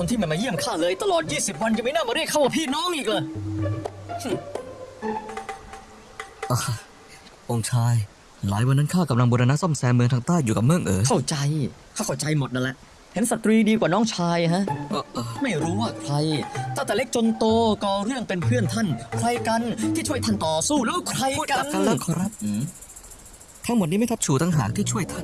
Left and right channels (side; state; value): both; identical; correlation 1.00